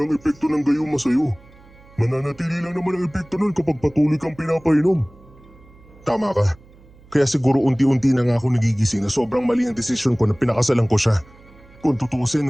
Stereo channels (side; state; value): right; noise; hum, 25 dB below the sound